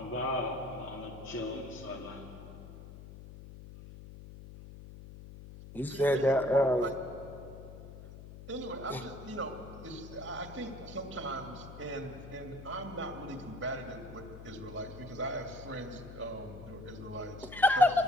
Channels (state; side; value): noise; left; hum, 14 dB below the sound